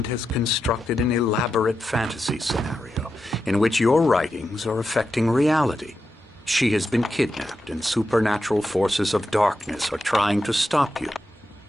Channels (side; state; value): both; normal; correlation 0.88